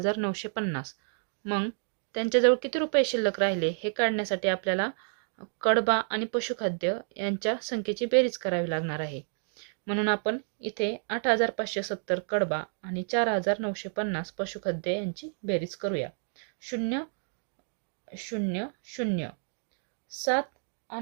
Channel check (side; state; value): left; silent; 58 dB below the other